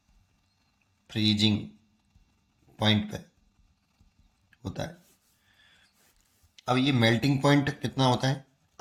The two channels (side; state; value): both; identical; correlation 1.00